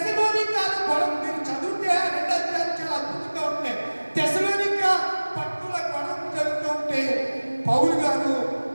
గొడవ మీరు చదివితే 2 అధ్యాయాలు చాలా అద్భుతంగా ఉంటాయి. తెస్సలోనికా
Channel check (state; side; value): inverted; both; correlation -1.00